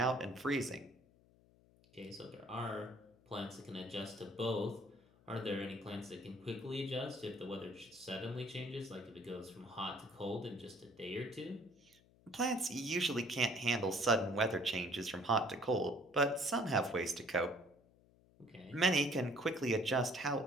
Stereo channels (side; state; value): left; noise; hum, 29 dB below the sound